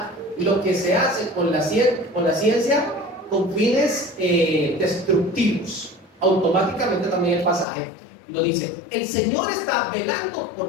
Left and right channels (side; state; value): right; drops out; at 7.7 s